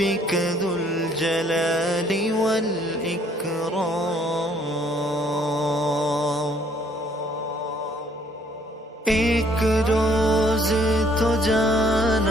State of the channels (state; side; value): normal; both; correlation 0.62